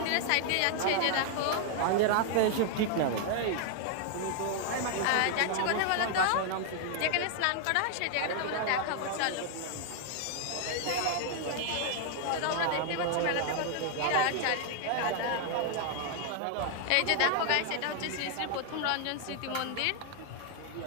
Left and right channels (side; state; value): both; different; correlation 0.00